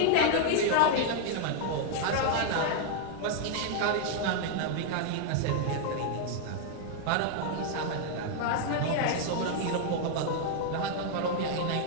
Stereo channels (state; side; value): different; both; correlation -0.01